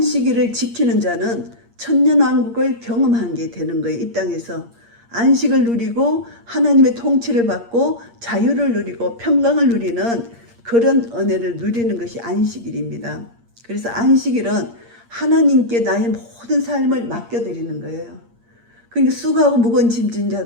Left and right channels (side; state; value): left; late; 8.6 ms